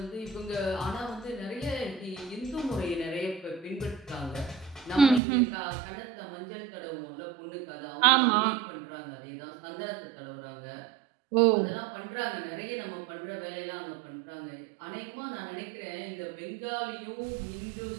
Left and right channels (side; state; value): left; drops out; at 5.2 s